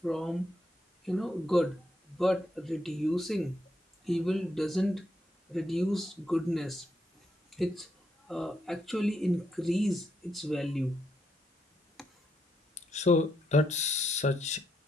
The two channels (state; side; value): normal; both; correlation 0.79